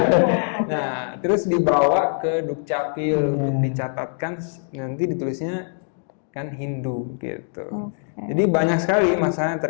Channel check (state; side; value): silent; right; 62 dB below the other